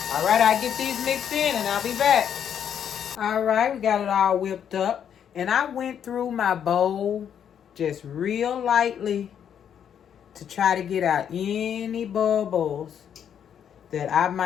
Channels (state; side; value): quieter; right; 8.7 dB